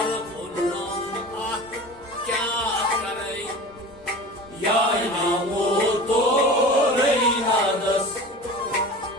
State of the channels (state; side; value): noise; right; rumble, 27 dB below the sound